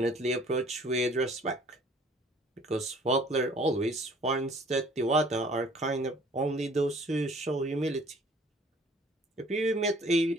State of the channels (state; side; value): normal; both; correlation 0.54